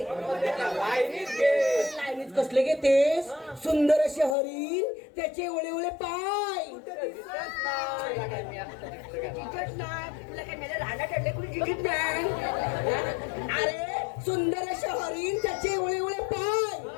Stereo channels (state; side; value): drops out; right; at 4.4 s